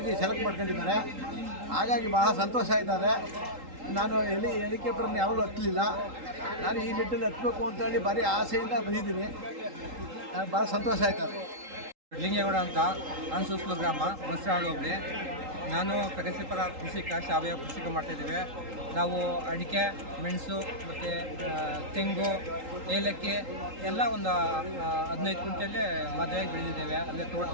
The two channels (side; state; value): left; late; 3.8 ms